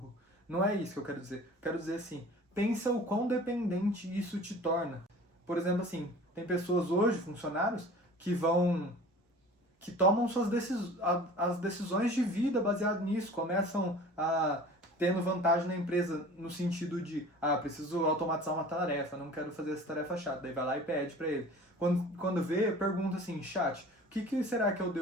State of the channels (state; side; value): normal; both; correlation 0.43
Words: Não é isso que eu quero dizer. Eu quero dizer assim, pensa o quão dependente isso te torna. Por exemplo, assim, tem pessoas hoje, funcionários, que tomam as decisões de vida baseado nisso, começam tendo vantagem na empresa no sentido de, preciso automatizar uma tarefa, não quero fazer essa tarefa chata, daí vai lá e pede para ele. Quando vê, pergunta assim, chat, o que será que eu